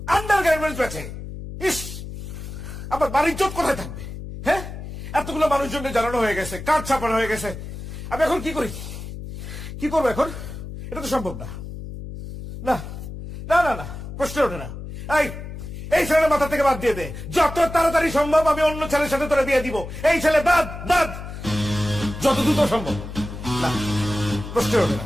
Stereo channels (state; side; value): noise; left; hum, 10 dB below the sound